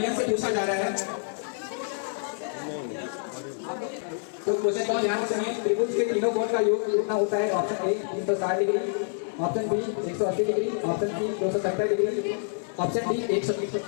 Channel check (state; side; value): silent; right; digital silence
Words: से पूछा जा रहा है, तो क्वेश्चन को ध्यान से सुनिए। त्रिभुज के तीनों कोण का योग कितना होता है। Option A 360 degree, option B 180 degree, option C 270 degree, option D 180 degree.